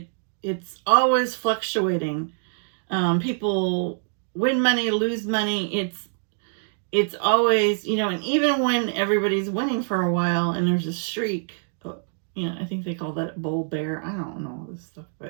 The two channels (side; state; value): left; silent; digital silence